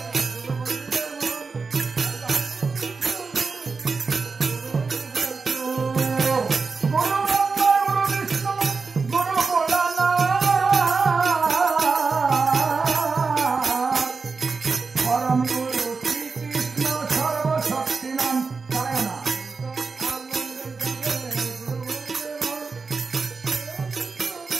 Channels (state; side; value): quieter; left; 4.6 dB